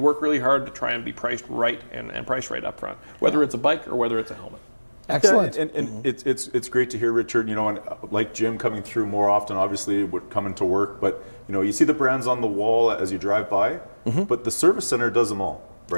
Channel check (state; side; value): inverted; both; correlation -1.00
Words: really hard to try and be priced right and priced right up front, whether it's a bike or whether it's a helmet. Excellent. Yeah, and it's great to hear, Richard. And like Jim coming through more often, obviously, would come into work. But you see the brands on the wall as you drive by, but the service center does them all,